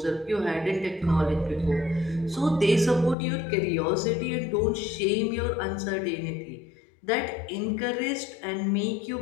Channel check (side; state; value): right; drops out; at 3.2 s